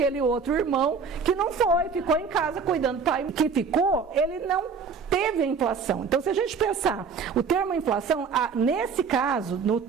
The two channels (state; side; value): quieter; left; 5.5 dB